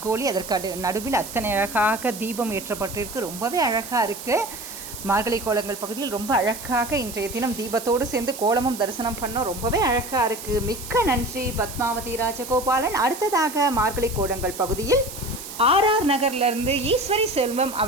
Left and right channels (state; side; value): noise; right; hiss, 11 dB below the sound